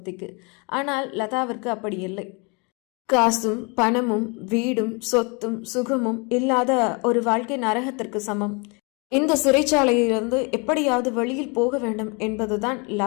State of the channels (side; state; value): right; quieter; 31.3 dB